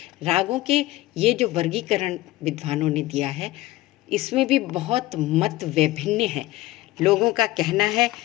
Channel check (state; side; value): quieter; right; 17.7 dB